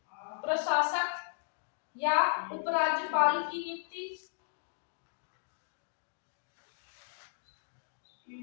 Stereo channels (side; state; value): right; silent; digital silence